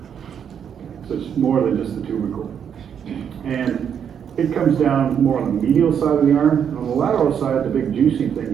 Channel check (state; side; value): quieter; left; 8.1 dB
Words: So it's more than just the tubercle. And it comes down more on the medial side of the arm. And on the lateral side, the big juicy thing